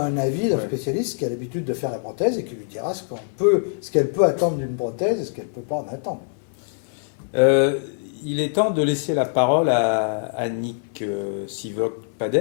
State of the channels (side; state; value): right; silent; digital silence